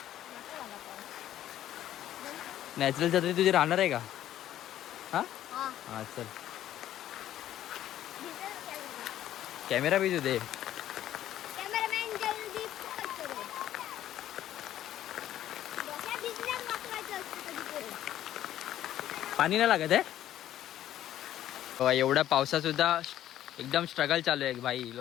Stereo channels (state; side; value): quieter; right; 12.3 dB